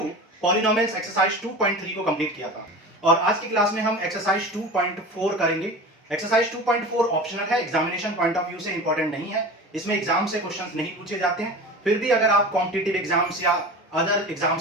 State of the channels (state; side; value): normal; both; correlation 0.33